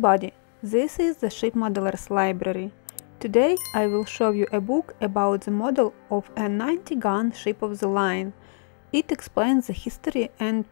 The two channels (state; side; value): silent; right; digital silence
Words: this is the Ship Modelers Library. Today I will show you a book about the model of a 90-gun ship of the line. It explains the history and